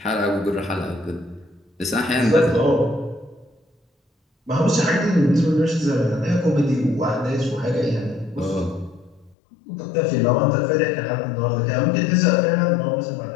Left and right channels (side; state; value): right; drops out; at 9.3 s